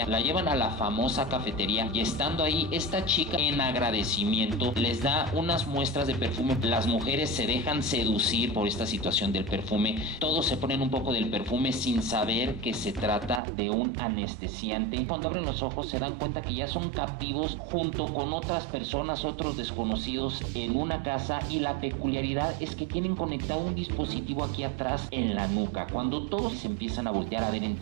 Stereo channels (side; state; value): left; drops out; at 13.4 s